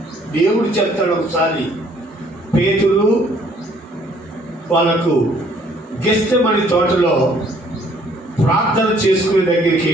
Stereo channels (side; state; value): both; normal; correlation 0.61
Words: దేవుడు చెప్తాడు ఒకసారి, పేతురు వాళ్ళకు గెస్తెమని తోటలో ప్రార్థన చేసుకునే దగ్గరికి